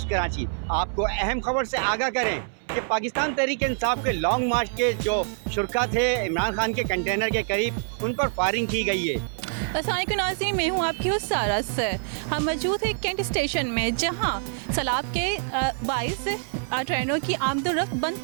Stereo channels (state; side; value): silent; left; 61 dB below the other